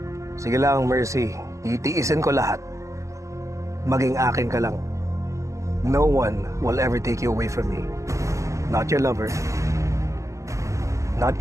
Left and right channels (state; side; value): late; left; 0.15 ms